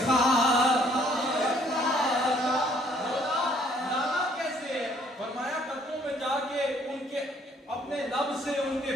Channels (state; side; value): normal; both; correlation 0.63